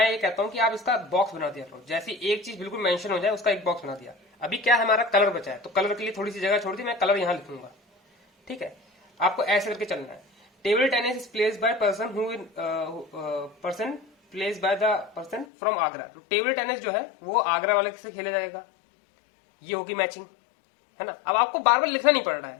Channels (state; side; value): drops out; right; at 15.5 s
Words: ये कहता हूं कि आप इसका बॉक्स बना दिया करो। जैसे एक चीज बिल्कुल मेंशन हो जाए उसका एक बॉक्स बना दिया। अभी क्या हमारा कलर बचा है, तो कलर के लिए थोड़ी सी जगह छोड़ दी, मैं कलर यहां लिखूंगा, ठीक है। आपको ऐसे करके चलना है। Table tennis is placed by person placed by the person from Agra. Table tennis जो है वो आगरा वाले से खेला जाएगा, ये होगी मैचिंग, है ना। अब आपको बार बार लिखना नहीं पड़ रहा